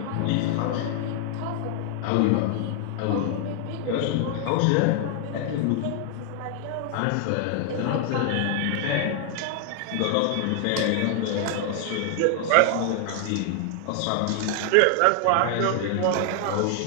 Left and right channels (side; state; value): both; different; correlation 0.00